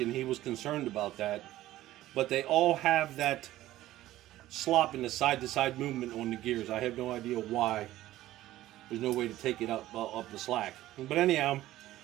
he was concerned about that. But they all have that slop in the side-to-side movement on the gears. I have no idea why. There's no way to take it up the slack. But anyhow,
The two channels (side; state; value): left; quieter; 15.1 dB